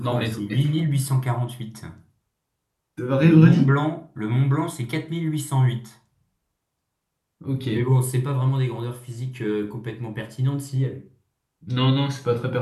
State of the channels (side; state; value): both; identical; correlation 1.00